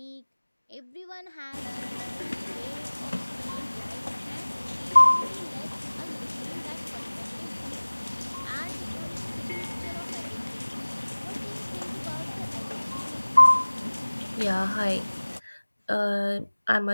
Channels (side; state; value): both; inverted; correlation -1.00